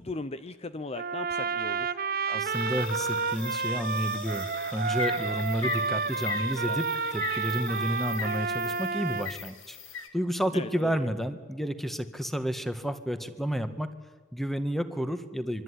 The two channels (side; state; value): both; normal; correlation 0.38